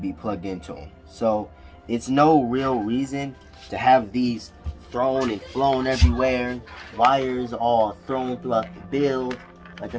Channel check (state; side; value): identical; both; correlation 1.00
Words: plugged into them. So it's no real reason to have these thrown and flown everywhere, wires all thrown throughout the build. Like